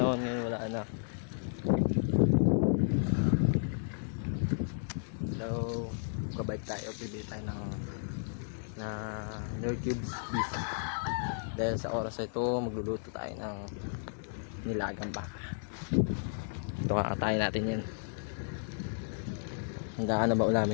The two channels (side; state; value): right; silent; digital silence